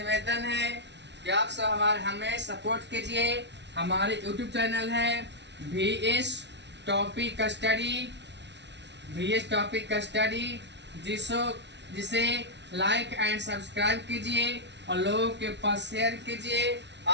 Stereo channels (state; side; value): late; left; 0.51 ms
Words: है कि आप सब हमें सपोर्ट कीजिए। हमारे यूट्यूब चैनल है VS टॉपिक स्टडी, जिसे लाइक एंड सब्सक्राइब कीजिए और लोगों के पास शेयर कीजिए।